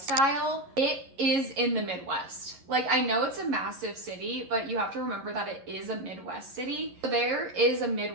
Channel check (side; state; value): left; late; 11 ms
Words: it is in the Midwest. Like I know it's a massive city, but you have to remember that it is a Midwest city. So there is a